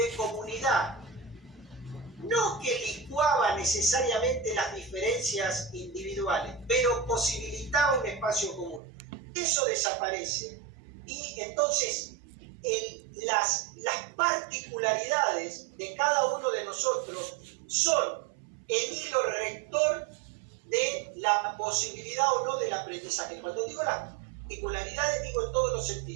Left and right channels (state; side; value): drops out; left; at 8.8 s